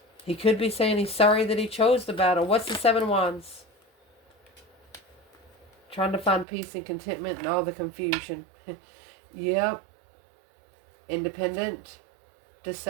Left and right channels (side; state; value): left; drops out; at 6.5 s